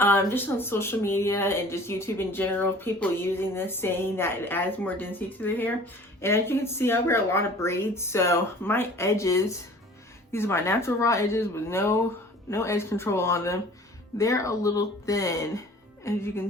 just on social media and just YouTube in general, people using this, saying that it adds more density to their hair. And as you can see, I wear a lot of braids, so my edges, these are my natural raw edges with no edge control on them. They're a little thin, as you can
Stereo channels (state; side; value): normal; both; correlation 0.47